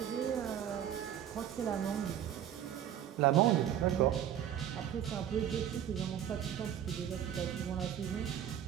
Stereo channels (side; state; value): left; quieter; 10.2 dB